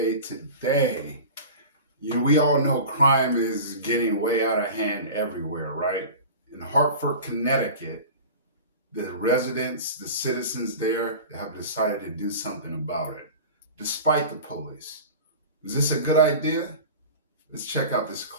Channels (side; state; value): both; inverted; correlation -0.35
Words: we all know crime is getting way out of hand everywhere, right? In Hartford, Connecticut, the residents, the citizens there have decided to do something about it, despite the police. Is this a good idea? Let's check out this